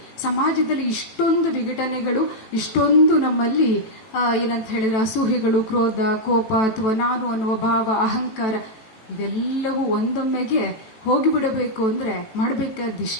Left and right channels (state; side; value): late; right; 18 ms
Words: ಸಮಾಜದಲ್ಲಿ ಇಷ್ಟೊಂದು ವಿಘಟನೆಗಳು, ಇಷ್ಟೊಂದು ನಮ್ಮಲ್ಲಿ ಏನಂತ ಹೇಳಿದ್ರೆ ಅಸೂಹೆಗಳು, ಕ್ರೋಧ, ಕೋಪ ಅಥವಾ ನಾನು ಅನ್ನುವ ಭಾವ, ಅಹಂಕಾರ, ಇದೆಲ್ಲವೂ ಒಂದೊಮ್ಮೆಗೆ ಹೋಗಿಬಿಡಬೇಕು ಅಂದ್ರೆ